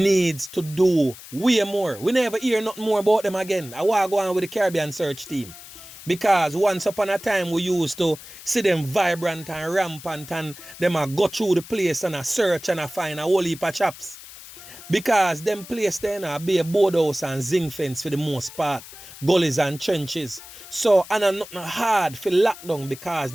to do way more. We never hear nothing more about them again. I want to go on with the Caribbean search team. Because once upon a time we used to see them vibrant and rampant and them a go through the place and a search and a find a whole heap of chaps. Because them place there be a boardhouse and zinc fence for the most part. Gullies and trenches. So, and I'm not hard for lockdown because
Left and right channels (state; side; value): noise; left; hiss, 16 dB below the sound